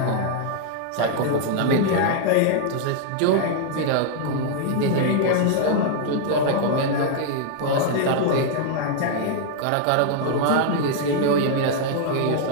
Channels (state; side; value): different; both; correlation 0.00